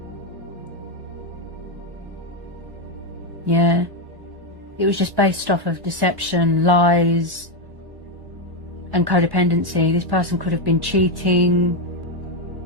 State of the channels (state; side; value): late; left; 1.1 ms